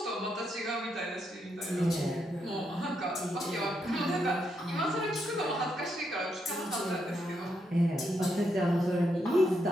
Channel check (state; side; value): normal; both; correlation 0.80